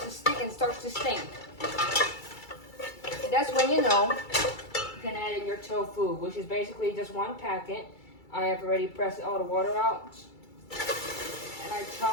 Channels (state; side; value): late; right; 2.3 ms